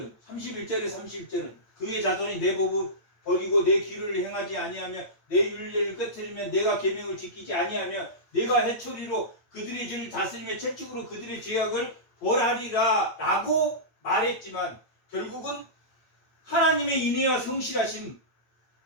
그의 자손이 내 법을 버리고 내 길을 행하지 아니하며 내 율례를 깨뜨리면 내가 계명을 지키지 아니하며 내가 해초리로 그들의 죄를 다스리며 채찍으로 그들의 죄악을 벌하리라 라고 말했지만 결국은 하나님의 인애와 성실하심으로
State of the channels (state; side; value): late; right; 8.8 ms